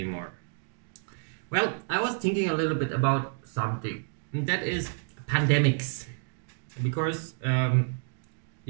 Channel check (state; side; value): silent; left; digital silence